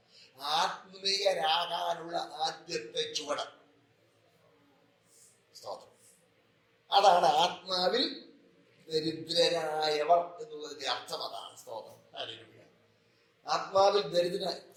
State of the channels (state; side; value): identical; both; correlation 1.00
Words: ആത്മീയരാകാനുള്ള ആദ്യത്തെ ചുവട്. അതാണ് ആത്മാവിൽ ദരിദ്രരായവർ എന്നുള്ളതിന്റെ അർത്ഥം. അതാണ് സ്തോത്രം. ആത്മാവിൽ